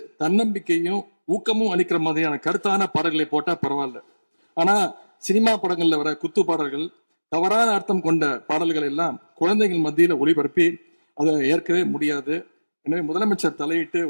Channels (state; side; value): inverted; both; correlation -1.00